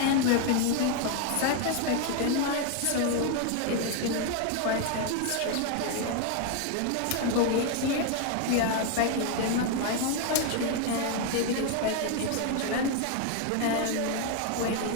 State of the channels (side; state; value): both; different; correlation 0.01